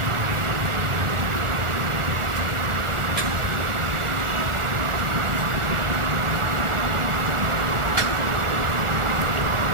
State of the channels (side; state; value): left; late; 1.4 ms